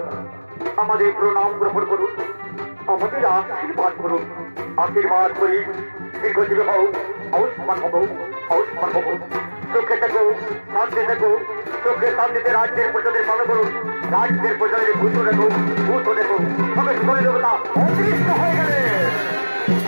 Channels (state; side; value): inverted; both; correlation -1.00